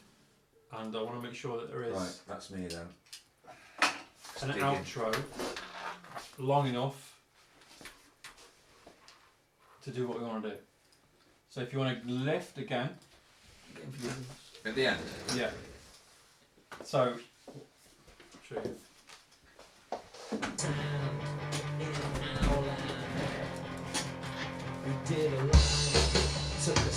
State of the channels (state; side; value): identical; both; correlation 1.00